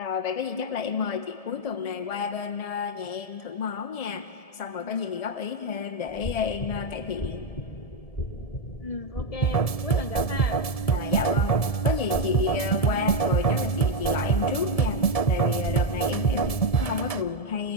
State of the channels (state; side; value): late; right; 1.7 ms